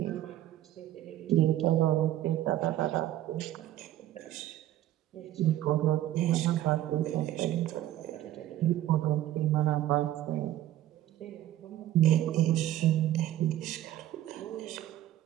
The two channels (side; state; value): left; quieter; 13.3 dB